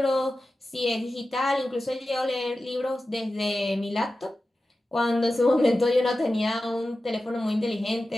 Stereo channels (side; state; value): both; normal; correlation 0.94